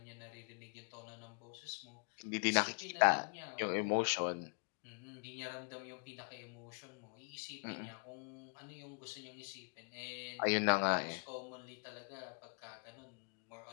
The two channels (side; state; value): right; quieter; 39.7 dB